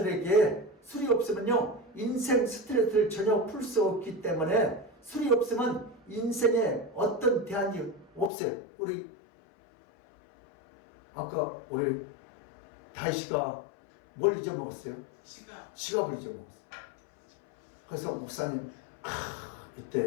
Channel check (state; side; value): drops out; right; at 8.3 s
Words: 술이 없으면요 인생 스트레스를 전혀 풀 수 없기 때문에, 술이 없으면 인생에 어떤 대안이 없어요. 우리 아까 우리 다희씨가 뭘 잊어먹었어요? 지갑을 잊어먹었어요. 그래서 목사님,